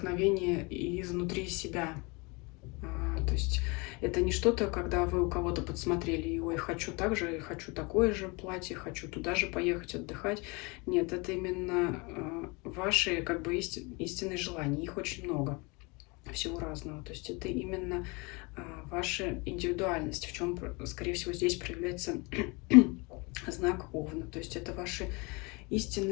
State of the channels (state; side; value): quieter; right; 28.0 dB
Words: изнутри себя. То есть это не что-то, когда вы у кого-то подсмотрели, и ой, хочу так же, хочу такое же платье, хочу туда же поехать отдыхать. Нет, это именно ваши как бы истинные желания. Их очень много, всего разного. То есть это именно ваша индивидуальность, в чем, скорее всего, здесь проявляется знак Овна. То есть это ваши